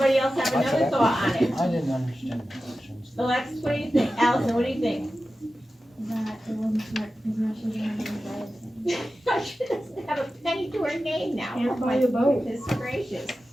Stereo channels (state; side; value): normal; both; correlation 0.93